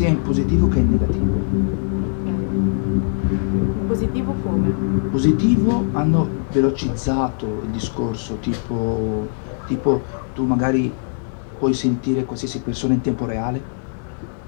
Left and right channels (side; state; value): right; silent; digital silence